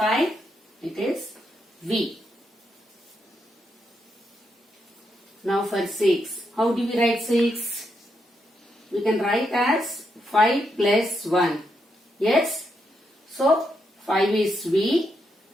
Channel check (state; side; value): normal; both; correlation 0.81